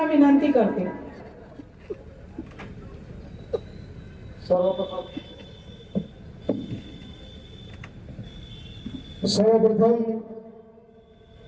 विनंती करते। सर्वप्रथम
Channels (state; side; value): identical; both; correlation 1.00